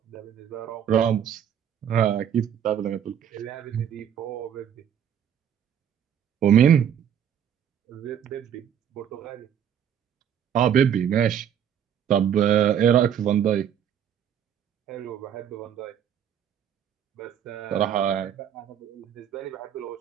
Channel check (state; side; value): quieter; left; 9.1 dB